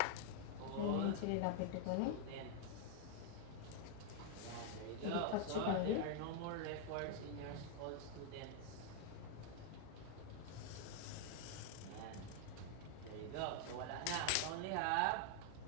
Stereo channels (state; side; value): different; both; correlation 0.00